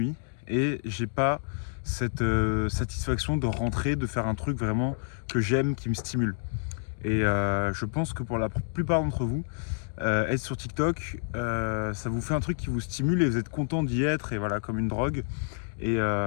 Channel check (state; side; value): silent; right; digital silence